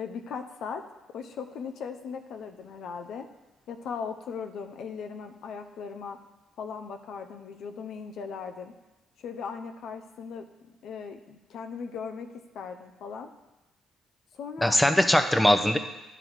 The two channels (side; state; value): both; normal; correlation 0.92